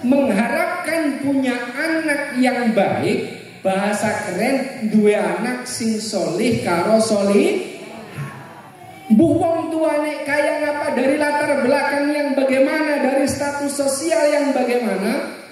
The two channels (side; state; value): both; identical; correlation 1.00